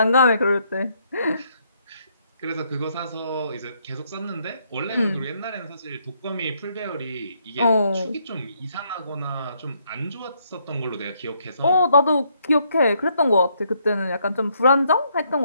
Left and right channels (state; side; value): inverted; both; correlation -0.72